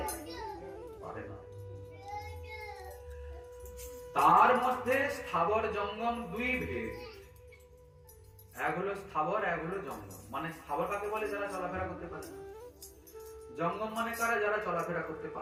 পারে না। তার মধ্যে স্থাবর জঙ্গম দুই ভেদ, এক হলো স্থাবর, এক হলো জঙ্গম। মানে স্থাবর কাকে বলে? যারা চলাফেরা করতে পারে না। জঙ্গম মানে কারা? যারা চলাফেরা করতে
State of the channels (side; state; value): both; identical; correlation 1.00